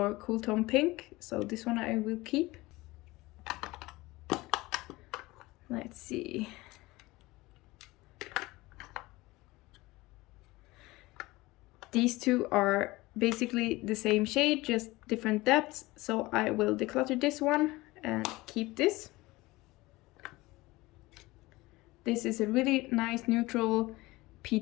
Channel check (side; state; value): right; quieter; 20.5 dB